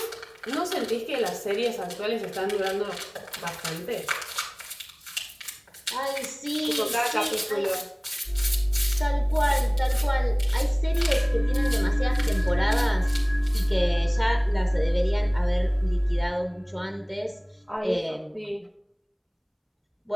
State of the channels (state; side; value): identical; both; correlation 1.00